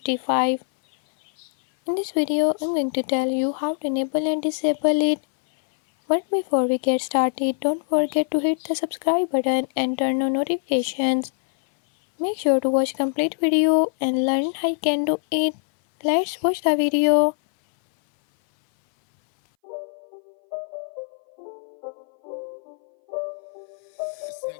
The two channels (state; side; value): silent; right; 59 dB below the other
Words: In this video I'm going to tell you how to enable and disable it. But before we get started, don't forget to hit the subscribe button and turn on notifications. Make sure to watch complete video and learn how you can do it. Let's watch the video. It's